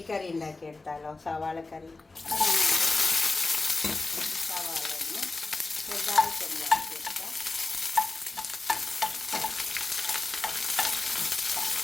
ഉണ്ടാക്കിയെടുത്താലോ? സവാളക്കറി. സവാള ഒന്ന് ചെറുതായിട്ട് ഉണ്ടാക്കിയെടുക്കാം.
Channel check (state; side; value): quieter; right; 3.5 dB